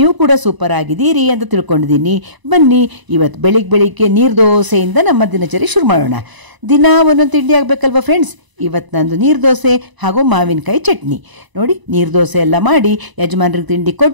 ಕೂಡ ಸೂಪರ್ ಆಗಿದ್ದೀರಿ ಅಂತ ತಿಳ್ಕೊಂಡಿದ್ದೀನಿ. ಬನ್ನಿ ಇವತ್ತು ಬೆಳಿಗ್ಗೆ ನೀರು ದೋಸೆಯಿಂದ ನಮ್ಮ ದಿನಚರಿ ಶುರು ಮಾಡೋಣ. ದಿನ ಒಂದೊಂದು ತಿಂಡಿ ಆಗಬೇಕಲ್ವ ಫ್ರೆಂಡ್ಸ್. ಇವತ್ತು ನಂದು ನೀರು ದೋಸೆ ಹಾಗೂ ಮಾವಿನಕಾಯಿ ಚಟ್ನಿ. ನೋಡಿ, ನೀರು ದೋಸೆ ಎಲ್ಲ ಮಾಡಿ ಯಜಮಾನ್ರಿಗೆ ತಿಂಡಿ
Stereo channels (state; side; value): late; left; 1.0 ms